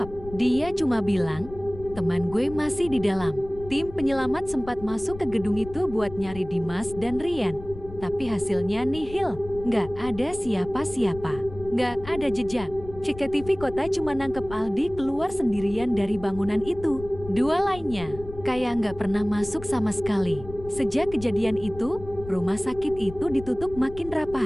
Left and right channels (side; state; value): left; noise; rumble, 14 dB below the sound